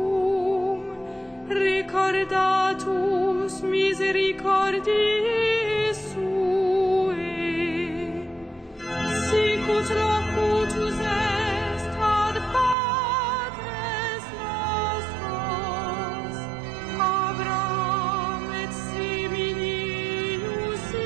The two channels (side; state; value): left; drops out; at 12.8 s